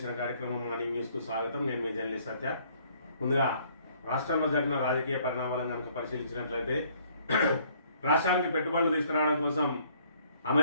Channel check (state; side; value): inverted; both; correlation -0.62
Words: కార్యక్రమం మార్నింగ్ న్యూస్ కు స్వాగతం. నేను మీ జర్నలిస్ట్ సత్య. ముందుగా రాష్ట్రంలో జరిగిన రాజకీయ పరిణామాలను కనుక పరిశీలించినట్లయితే రాష్ట్రానికి పెట్టుబడులు తీసుకురావడం కోసం